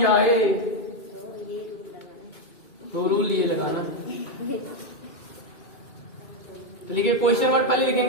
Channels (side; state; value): right; late; 2.2 ms